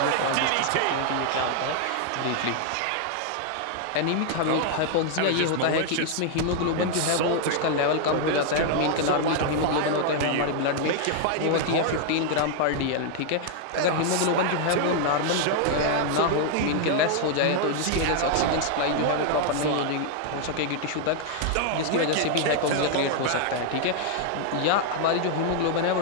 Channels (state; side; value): different; both; correlation 0.00